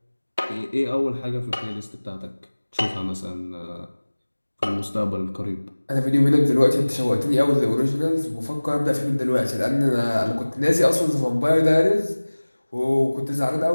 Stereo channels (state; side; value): inverted; both; correlation -1.00